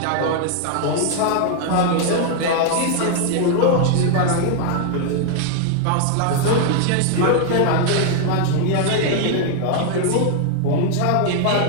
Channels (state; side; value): different; both; correlation 0.00